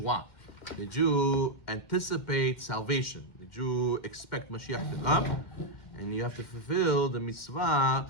Did you anticipate salvation? Did you expect Mashiach to come? And you have to fulfill the mitzvah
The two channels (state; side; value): late; right; 2.1 ms